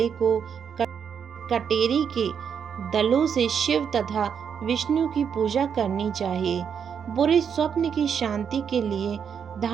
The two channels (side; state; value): left; quieter; 7.4 dB